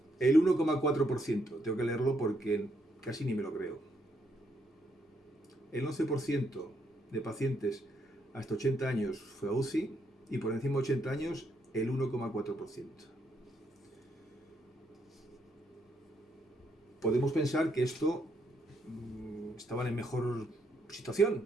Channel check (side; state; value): both; normal; correlation 0.75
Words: el 1,4%. Tengo que leerlo porque casi ni me lo creo. El 11% de pacientes hasta 80 años fue a UCI y por encima de 80 años el 1,4%. Podemos pensar que esto estaban en mejor situación